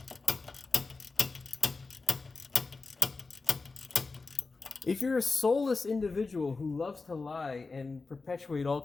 If you're a soulless individual who loves to lie and perpetuate all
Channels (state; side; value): quieter; right; 4.0 dB